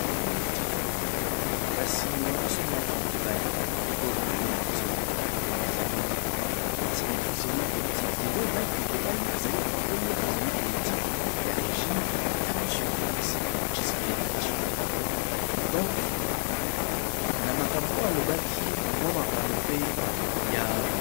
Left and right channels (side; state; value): right; silent; digital silence